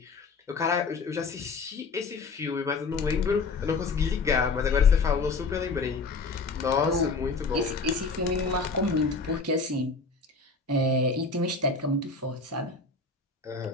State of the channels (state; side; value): quieter; right; 4.1 dB